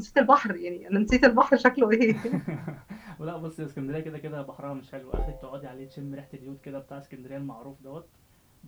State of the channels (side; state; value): both; identical; correlation 1.00